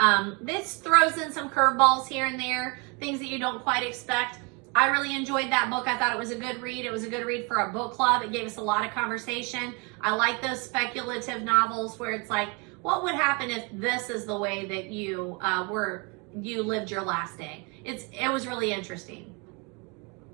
This throws in some curveballs here and there, things that you don't quite expect. I really enjoyed that book. I thought it was a good read. It was a good read for a book club. It gave us a lot of conversation. I like those speculative novels where it's like, what would happen if this is the way that you lived your last day? It was really interesting.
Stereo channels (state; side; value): quieter; left; 31.3 dB